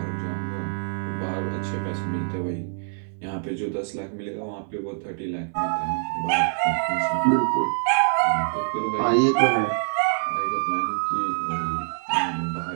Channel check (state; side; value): silent; left; 62 dB below the other